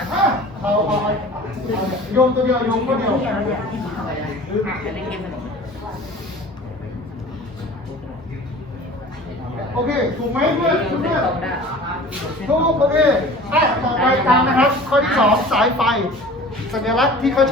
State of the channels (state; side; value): normal; both; correlation 0.43